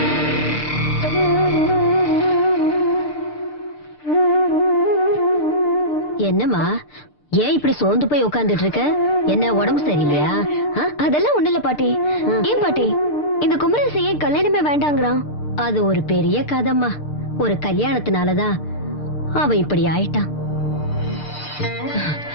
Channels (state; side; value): late; right; 6.7 ms